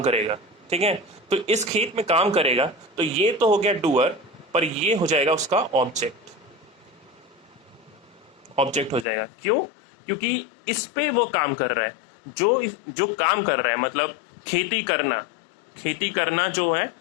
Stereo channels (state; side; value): drops out; right; at 9.1 s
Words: करेगा। ठीक है, तो इस खेत में काम करेगा, तो ये तो हो गया डूअर, पर ये हो जाएगा उसका ऑब्जेक्ट। ऑब्जेक्ट हो जाएगा, क्यों, क्योंकि इस पे वो काम कर रहा है, जो काम कर रहा है, मतलब खेती करना, खेती करना जो है